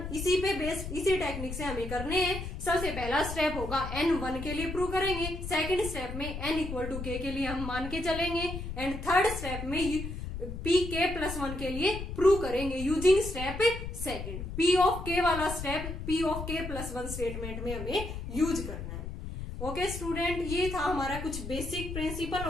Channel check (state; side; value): noise; left; rumble, 7 dB below the sound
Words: इसी पे बेस्ड, इसी टेक्निक से हमें करने हैं। सबसे पहला स्टेप होगा n1 के लिए प्रूव करेंगे, सेकंड स्टेप में n इक्वल टू k के लिए हम मान के चलेंगे, एंड थर्ड स्टेप में Pk प्लस 1 के लिए प्रूव करेंगे using step second. P of k वाला step P of k plus 1 statement में हमें यूज करना है। ओके स्टूडेंट, ये था हमारा कुछ basic principle